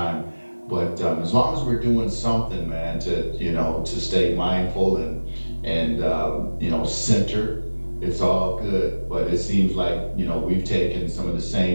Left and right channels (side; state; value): both; inverted; correlation -1.00